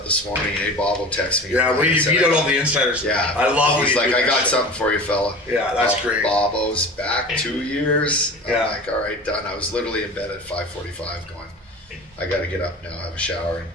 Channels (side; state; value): both; normal; correlation 0.36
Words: this morning. Hey, Bob text me. Yeah, when you beat out all the insiders. Yeah. I love He's like, I got something for you, fella. Yeah, that's great. Bobo's back 2 years. Yeah. I'm like, all right, done. I was literally in bed at 5:45 going, I got to get up now, have a shower, and